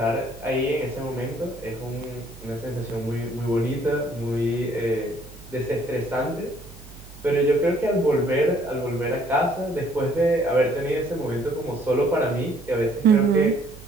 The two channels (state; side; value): noise; right; hum, 19 dB below the sound